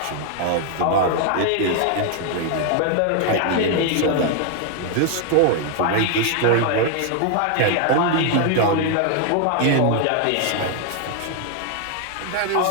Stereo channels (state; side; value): different; both; correlation 0.00